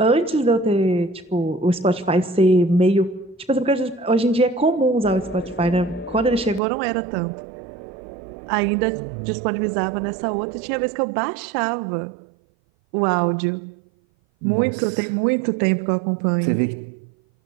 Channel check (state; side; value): drops out; left; at 6.6 s